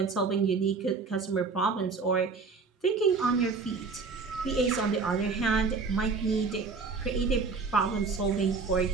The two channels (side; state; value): left; quieter; 4.6 dB